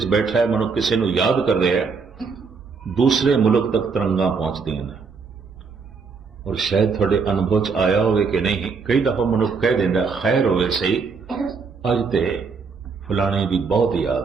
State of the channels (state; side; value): quieter; left; 5.1 dB